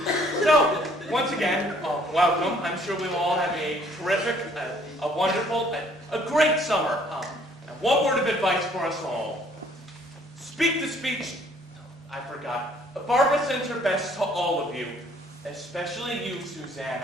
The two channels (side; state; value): both; normal; correlation 0.60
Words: So, once again, welcome. I'm sure we will all have a terrific, a wonderful, a great summer. And one word of advice for us all. Speak the speech. I forgot. Barbara sends her best to all of you, especially you,